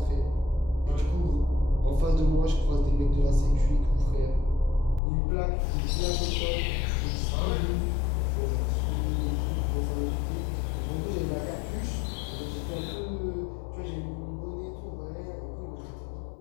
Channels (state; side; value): drops out; right; at 5.0 s